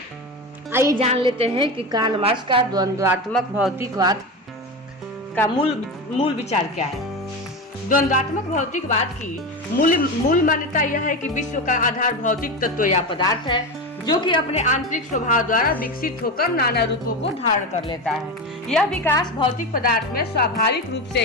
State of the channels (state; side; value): normal; both; correlation 0.21